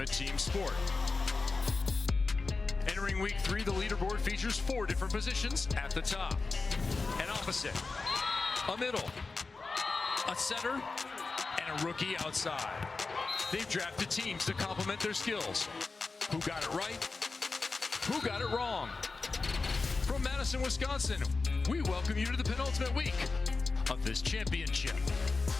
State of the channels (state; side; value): quieter; right; 4.0 dB